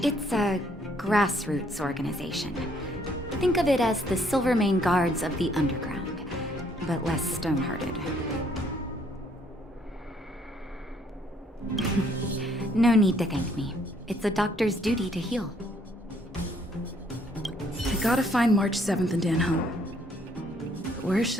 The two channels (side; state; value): both; normal; correlation 0.66